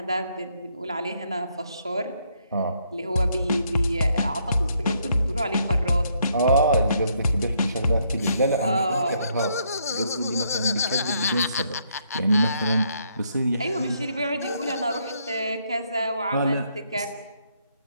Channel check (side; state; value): both; inverted; correlation -0.73